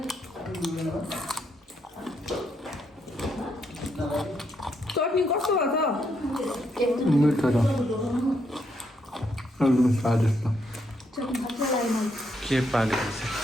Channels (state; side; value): normal; both; correlation 0.77